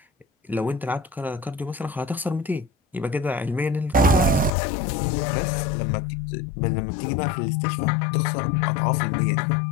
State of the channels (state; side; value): drops out; right; at 4.5 s